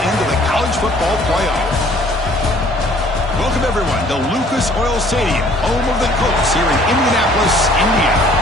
into the college football playoff. Welcome, everyone, to Lucas Oil Stadium, home of the Colts here in Indianapolis, Indiana.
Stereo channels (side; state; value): both; normal; correlation 0.56